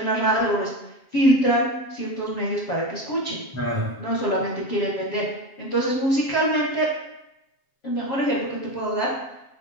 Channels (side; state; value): right; late; 7.5 ms